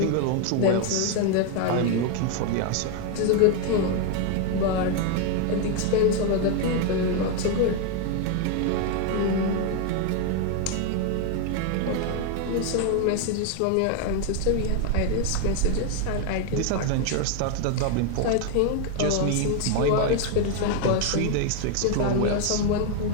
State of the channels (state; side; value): different; both; correlation 0.01